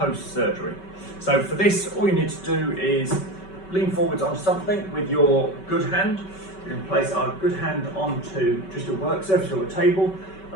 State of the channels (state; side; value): late; right; 5.3 ms